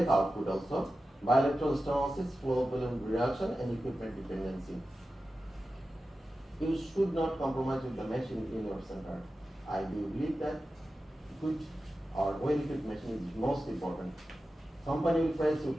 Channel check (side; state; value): both; normal; correlation 0.93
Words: output also, bilateral stenosis, flow volume reduction, and equipment dependency. You should not compromise with the machine in your center. I do believe that good or well-equipped machine is most important. Company will price you,